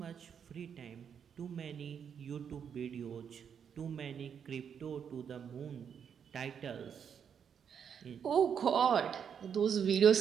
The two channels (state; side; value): quieter; left; 7.6 dB